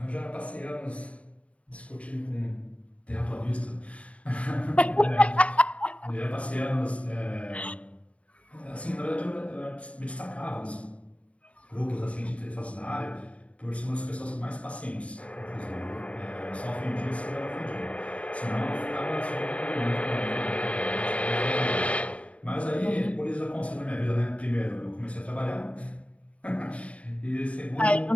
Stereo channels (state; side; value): late; right; 0.064 ms